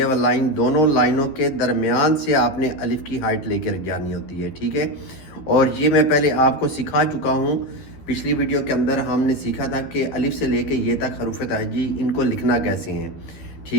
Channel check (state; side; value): late; right; 13 ms